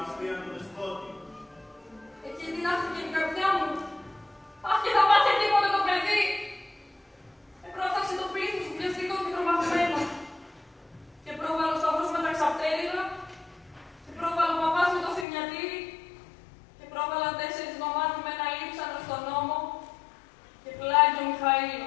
πήραν τον δεσπότη. Εκεί δυνάχθηκε η καρδιά μου. Αχ, και θα πάθει τίποτε το παιδί. Επρόφταξε το πλήθος βιαστικό και τρομαγμένο. Και πρόβαλε ο σταυρός με τα ξαπτέρυγα. Και πρόβαλε ο παπάς με το θρηνιατήρι. Και πρόβαλαν 4 νομάτια με ένα λείψανο στον νόμο. Και πλάγει ο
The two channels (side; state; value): right; drops out; at 15.2 s